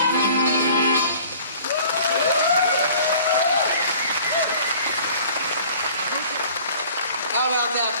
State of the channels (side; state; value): both; inverted; correlation -0.49